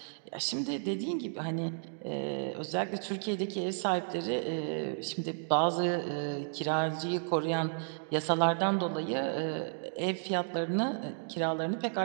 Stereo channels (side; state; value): left; silent; digital silence